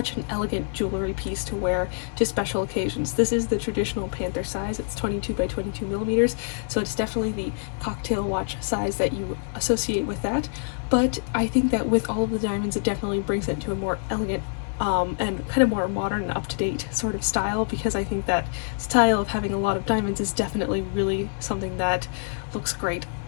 an elegant jewelry piece to wear to special occasions. This is the traditional Panther size. It's 22 by 22 millimeters, so it's definitely the cocktail watch size that you associate with that, but I think that with all of the diamonds it definitely brings it to a more elegant and kind of more modern and up-to-date sort of style, because I think that style of having a lot of diamonds is definitely really something that looks great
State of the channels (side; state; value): right; silent; digital silence